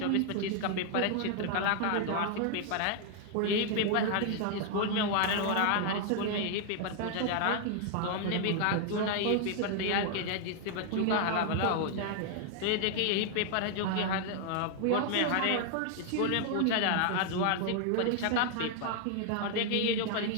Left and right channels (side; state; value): both; different; correlation 0.00